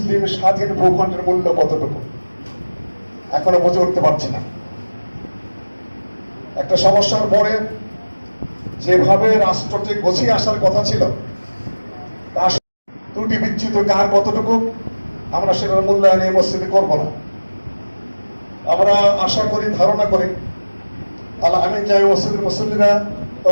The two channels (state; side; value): inverted; both; correlation -1.00